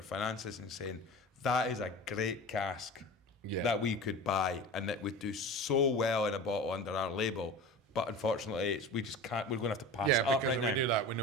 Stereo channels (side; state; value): both; normal; correlation 0.33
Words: finances and saying that is a great cask? That we could buy and that would do so well in a bottle under our label, but unfortunately we just can't. We're going to have to pass it up right now. Yeah, we do that. We